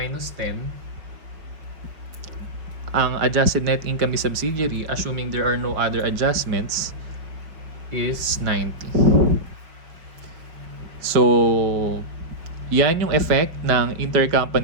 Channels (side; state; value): left; late; 5.5 ms